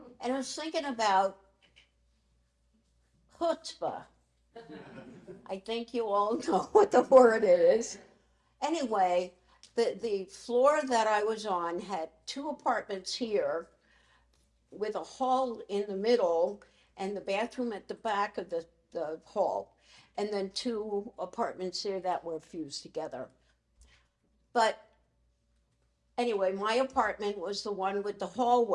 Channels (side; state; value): both; identical; correlation 1.00